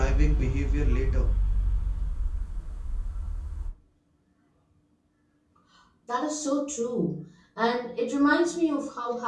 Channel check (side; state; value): both; identical; correlation 1.00